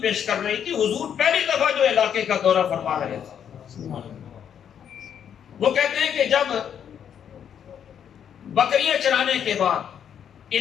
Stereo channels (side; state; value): right; quieter; 8.7 dB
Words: کر رہی تھی، حضور پہلی دفعہ جو علاقے کا دورہ فرما رہے تھے۔ وہ کہتے ہیں کہ جب بکریاں چرانے کے بعد